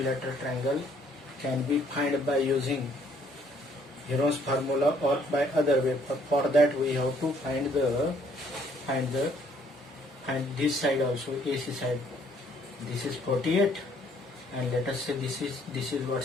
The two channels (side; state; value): both; normal; correlation 0.64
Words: triangle can be found by using Heron's formula or by other way. For that we have to find this side also, AC side. This is 48, and let us say this is what,